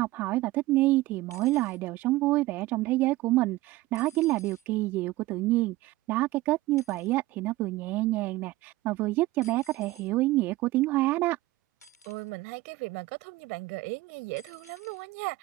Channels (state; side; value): quieter; left; 18.4 dB